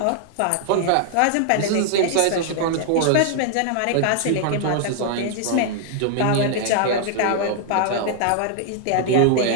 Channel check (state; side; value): different; both; correlation -0.01